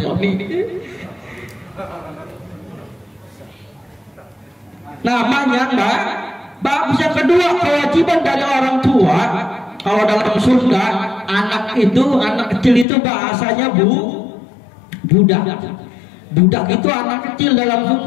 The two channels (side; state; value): right; drops out; at 12.9 s